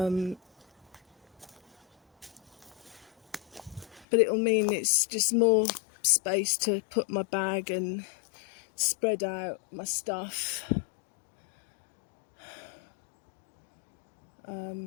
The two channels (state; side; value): drops out; right; at 4.0 s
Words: it'll mean it's just more space to put my bag and spread out my stuff.